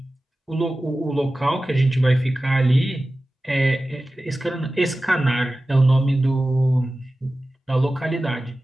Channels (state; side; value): normal; both; correlation 0.95